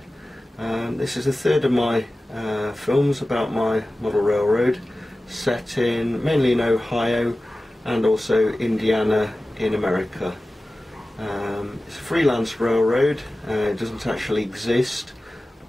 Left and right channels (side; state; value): both; normal; correlation 0.96